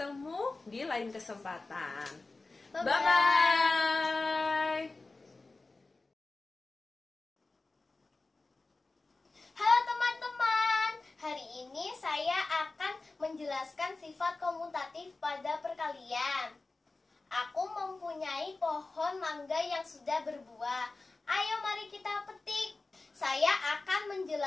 di lain kesempatan. Bye-bye. Halo teman-teman, hari ini saya akan menjelaskan sifat komutatif pada perkalian. Aku mempunyai pohon mangga yang sudah berbuah. Ayo mari kita petik. Saya akan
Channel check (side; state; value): right; quieter; 3.5 dB